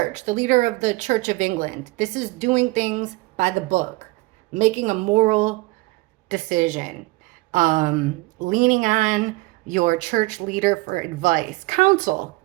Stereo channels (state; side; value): quieter; left; 22.4 dB